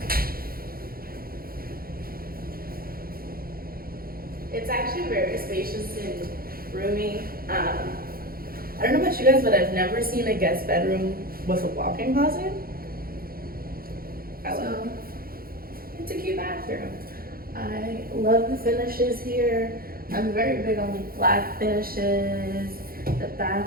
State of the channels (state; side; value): late; left; 0.43 ms